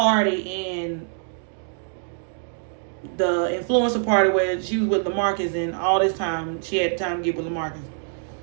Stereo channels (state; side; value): silent; left; 62 dB below the other